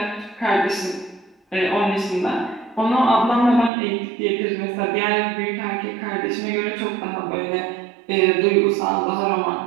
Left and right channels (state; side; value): drops out; left; at 3.7 s